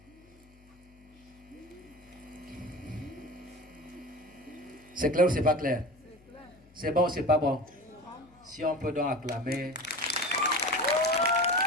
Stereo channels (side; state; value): left; noise; hum, 28 dB below the sound